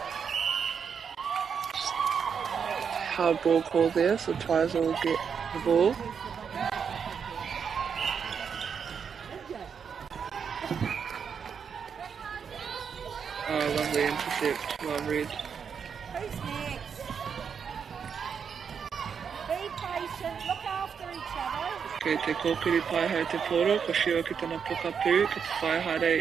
Hard ball call there, so Twizel will get the ball. Oh, lovely intercept, well read. Who's next? Be patient, look after each other. Kei te kōkiri pai hei te poro, ko shio ki tana pokapū, ki te whai haere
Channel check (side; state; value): left; quieter; 6.8 dB